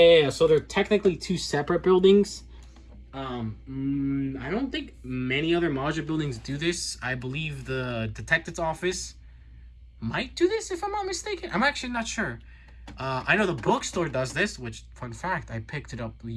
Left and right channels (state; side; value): identical; both; correlation 1.00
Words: so they're technically two separate buildings. I don't think many other modular buildings do this. I believe the detective's office might do this, if I'm not mistaken. I'm actually not sure. I know the bookstore does this, which, fun fact, I picked it up